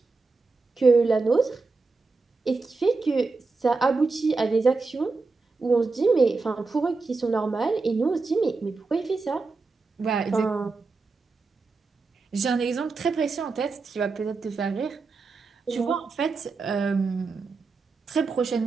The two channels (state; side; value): quieter; left; 4.0 dB